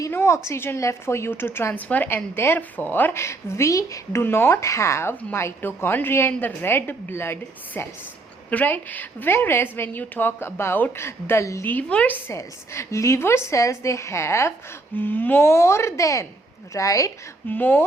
no oxygen left for you to transfer, and therefore we do not have mitochondria in the red blood cells, right? Whereas when you talk about the liver cells, they have more than, right,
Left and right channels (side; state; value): left; quieter; 3.2 dB